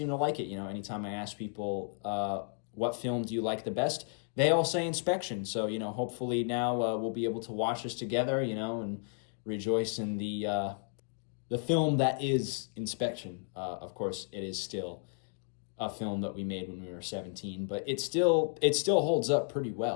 to like it. You know, anytime I ask people what film do you like the best, they all say Inspection. So hopefully now we'll be able to watch this together. And rejoice in the film that is Inspection. Of course, it is still a film that we made when we were 17, but it still holds up pretty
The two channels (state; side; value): silent; right; 56 dB below the other